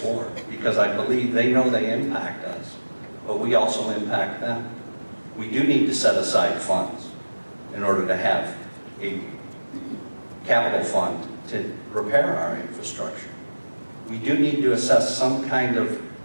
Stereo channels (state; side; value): inverted; both; correlation -1.00